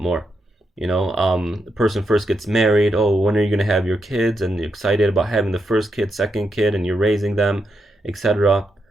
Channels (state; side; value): normal; both; correlation 0.83